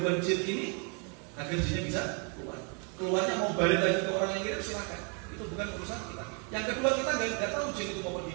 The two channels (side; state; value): left; quieter; 37.3 dB